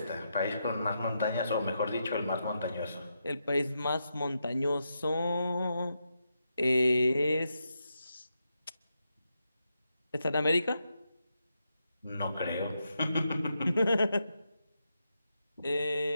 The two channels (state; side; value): inverted; both; correlation -0.84